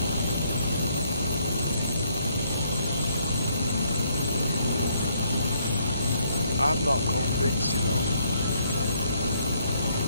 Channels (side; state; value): both; inverted; correlation -0.70